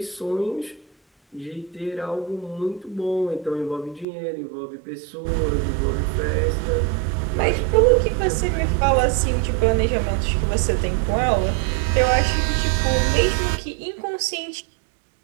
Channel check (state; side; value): drops out; left; at 4.0 s